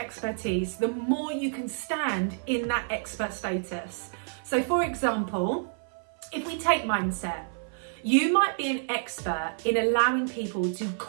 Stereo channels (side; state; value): left; silent; 57 dB below the other